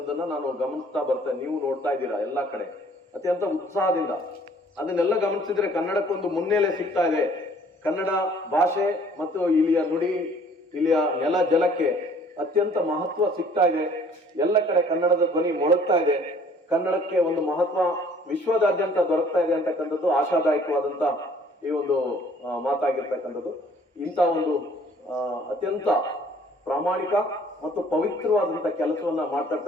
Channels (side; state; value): both; normal; correlation 0.56